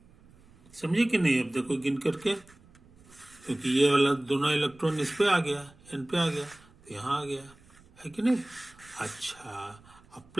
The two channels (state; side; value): noise; right; rumble, 27 dB below the sound